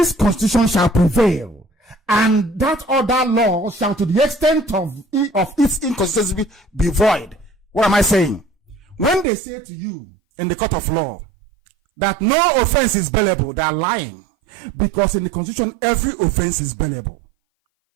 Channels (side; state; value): left; drops out; at 9.2 s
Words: Constitution shall prevail. And that other law shall, to the extent of its inconsistency, be void. What am I saying? When they say to you in the court of law that no offense is bailable, they are lying. Because in the Constitution, every offense is bailable.